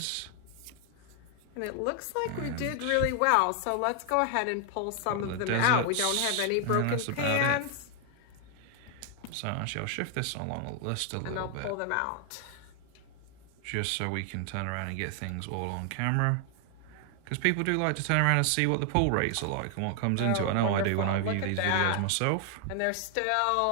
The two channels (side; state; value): both; different; correlation 0.00